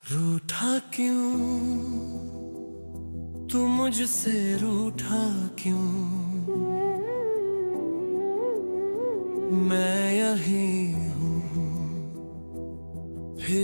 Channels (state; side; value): inverted; both; correlation -1.00